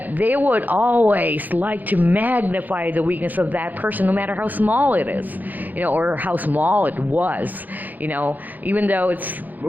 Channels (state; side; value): late; left; 0.083 ms